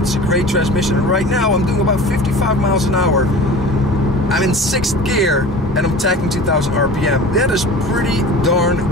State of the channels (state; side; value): normal; both; correlation 0.37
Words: a great transmission, and right now I'm doing about 55 miles an hour. I'm in 6th gear, and I'm tacking 2,000 RPM. That is pretty